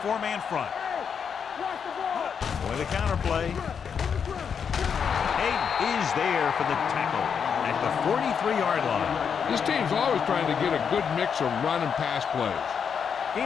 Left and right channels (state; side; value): quieter; right; 6.9 dB